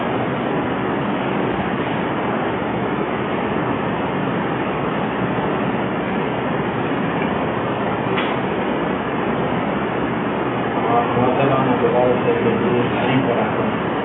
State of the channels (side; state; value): both; identical; correlation 1.00